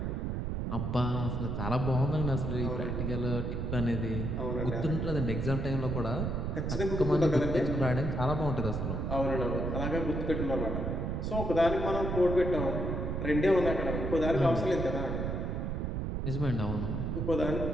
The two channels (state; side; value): noise; right; rumble, 1 dB below the sound